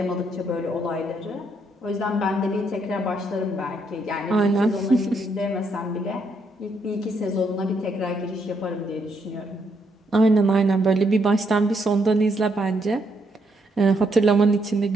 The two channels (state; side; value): normal; both; correlation 0.75